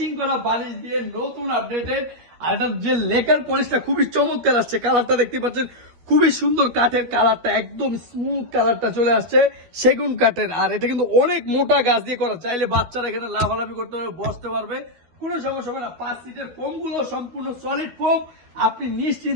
করা বালিশ দিয়ে নতুন আপডেটেড। আর এটার যে লেকার পলিশটা খুবই চমৎকার আসছে, কালারটা দেখতে পাচ্ছেন খুবই সুন্দর, কাঠের কালারটা একদম স্মুথ কালারটা চলে আসছে, সেগুন কাঠের। আর এটা কিন্তু অনেক মোটা গাছ দিয়ে করা, চাইলে বাচ্চারা এখানে লাভালাভি করতে পারবে, বসতে পারবে, কোনো সমস্যা হবে না। 5 সিটের ফোম গুলো সম্পূর্ণ সলিড ফোম, আপনি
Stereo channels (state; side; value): late; left; 13 ms